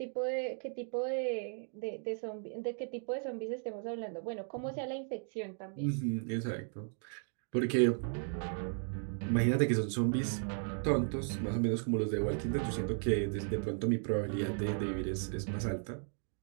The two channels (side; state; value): left; silent; 54 dB below the other